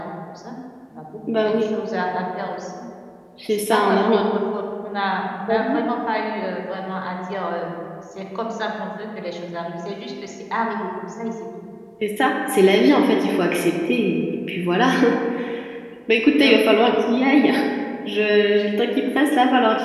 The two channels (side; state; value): both; identical; correlation 1.00